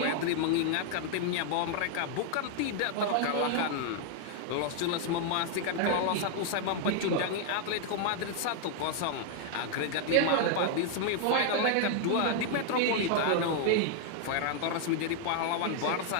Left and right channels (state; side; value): different; both; correlation 0.00